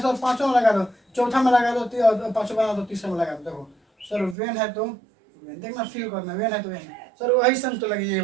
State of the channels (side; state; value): left; drops out; at 4.4 s